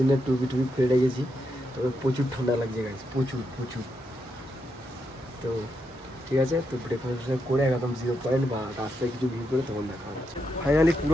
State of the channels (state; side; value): normal; both; correlation 0.82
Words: টুপি খুলে রেখেছি, তবে প্রচুর ঠান্ডা লাগছে গাইস, প্রচুর। তো ঠিক আছে, তো ব্রেকফাস্ট করে একদম 0 পয়েন্ট বা রাস্তায় কিছু ভিউ করে তখন দেখা হচ্ছে। ফাইনালি